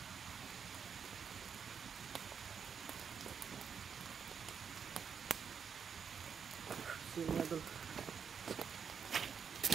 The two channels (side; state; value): left; quieter; 6.8 dB